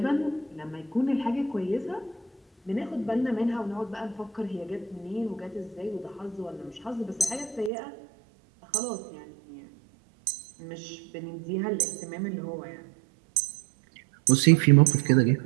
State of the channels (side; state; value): left; drops out; at 7.7 s